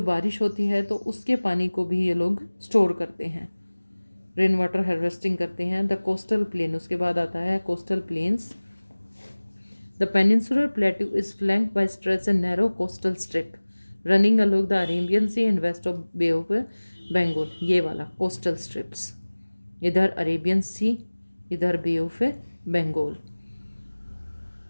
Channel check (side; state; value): both; inverted; correlation -1.00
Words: बारिश होती है तो उसके पानी को भी ये लोग स्टोर करते हैं, रेन वाटर हार्वेस्टिंग करते हैं. द कोस्टल प्लेन, उसके बाद आता है coastal plains. The peninsular plateau is flanked by stretch a narrow coastal strip running along the Arabian sea and west of bay of Bengal. ये वाला कोस्टल स्ट्रिप्स, इधर अरेबियन सी, इधर bay of Bengal.